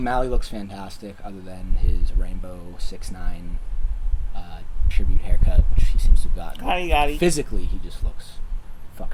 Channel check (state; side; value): identical; both; correlation 1.00